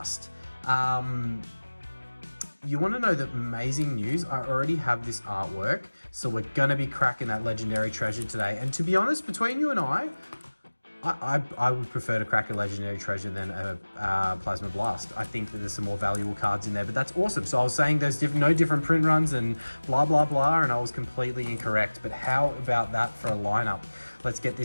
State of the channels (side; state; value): both; inverted; correlation -1.00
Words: You want to know the amazing news? I already have this artwork, so we're going to be cracking that Legendary Treasure today. And to be honest, between you and I would prefer to crack a Legendary Treasure than a Plasma Blast. I think that there's some more valuable cards in there, but that's awesome. So I was saying there's no different print runs and blah, blah, blah, and I was completely incorrect. But how about that for a lineup? Let's get